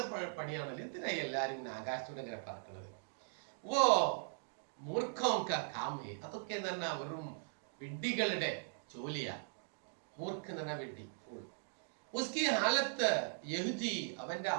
പണിയാണല്ലോ. എന്തിനായി എല്ലാരും ഇങ്ങനെ ആകാശത്തൂടെ ഇങ്ങനെ പറക്കുന്നത്? ഓ മൂർഖോം കാ കാം ഹേ, അതൊക്കെ എന്ന് പറഞ്ഞാൽ വെറും വിഡ്ഢികളുടെ ജോലിയാ. മൂർഖ് എന്ന് പറഞ്ഞാൽ വിഡ്ഢി, ഫൂൾ. ഉസ്കി ഹാലത്ത് യഹ്ദി, അവന്റെ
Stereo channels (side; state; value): left; silent; digital silence